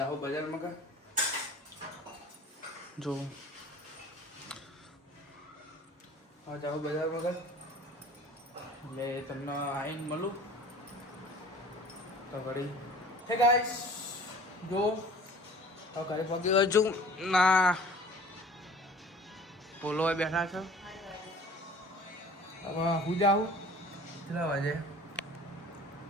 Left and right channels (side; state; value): both; normal; correlation 0.46